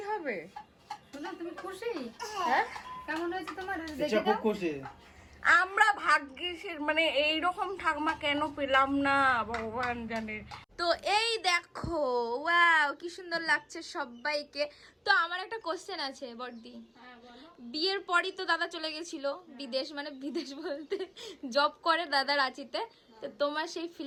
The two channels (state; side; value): identical; both; correlation 1.00